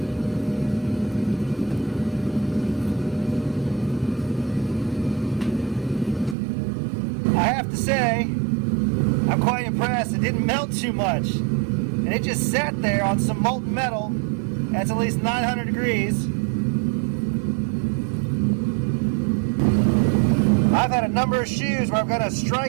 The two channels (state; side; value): drops out; left; at 6.4 s